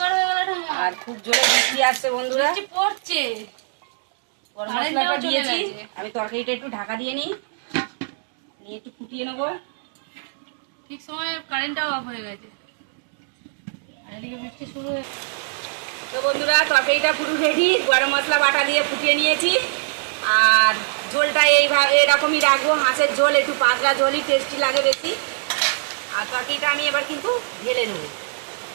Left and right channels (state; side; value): silent; left; digital silence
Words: হয়ে গেল আর খুব জোরে বৃষ্টি আসছে বন্ধুরা, পড়ছে। গরম মশলাটা দিয়েছি। আমি তরকারিটা একটু ঢাকা দিয়ে নিই, নিয়ে একটু ফুটিয়ে নেবো। ঠিক সময় কারেন্টটাও অফ হয়ে গেছে আর এদিকে বৃষ্টি শুরু হয়ে। তো বন্ধুরা তরকারিটা পুরো রেডি, গরম মশলা বাটা দিয়ে ফুটিয়ে নিয়েছি। আর ঝোলটা এইভাবে এরকমই রাখবো, হাঁসের ঝোল একটু পাতলা ঝোলই টেস্টি লাগে বেশি। আর তরকারিটা আমি এবার কিন্তু ঢেলে নেবো।